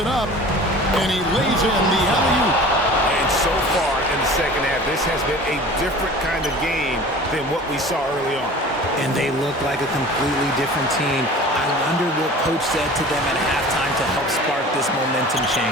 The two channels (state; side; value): normal; both; correlation 0.42